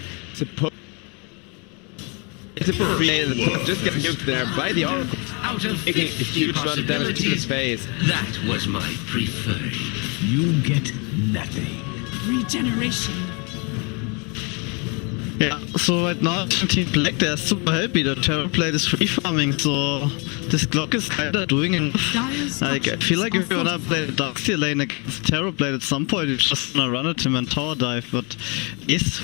supposed to put in the top, just get nuked there by the Oracle, Out of taking a 50 huge amount of damage to his face. That was my preferred. You get nothing. Regeneration. Yeah, so right now Team Black, they're super happy that Terrorblade is free farming, so this Glock is kinda doing enough. Like, I feel like if you wanna play the Darkseer lane against Terrorblade at some point, you're just gonna run at him and tower dive, but he's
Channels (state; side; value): quieter; right; 32.8 dB